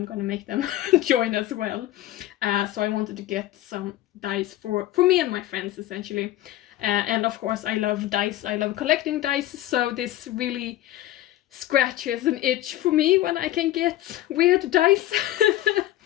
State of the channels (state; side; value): quieter; right; 14.5 dB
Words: gonna make them join as well. So I wanted to get some dice for me and my friends, essentially. And of course, I love dice, I love collecting dice, so this really scratches an itch for me when I can get weird dice.